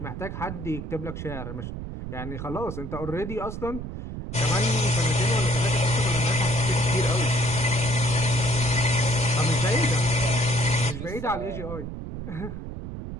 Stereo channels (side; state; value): right; noise; rumble, 8 dB below the sound